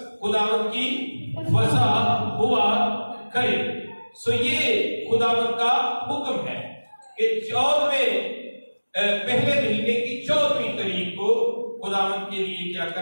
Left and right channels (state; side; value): inverted; both; correlation -1.00